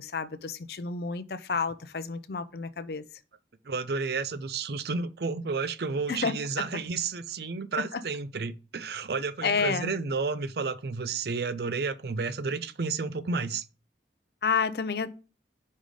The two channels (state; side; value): normal; both; correlation 0.07